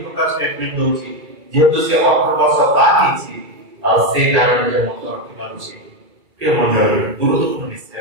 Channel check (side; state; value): left; late; 2.3 ms